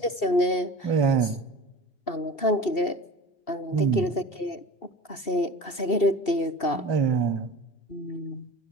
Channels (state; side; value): late; right; 2.7 ms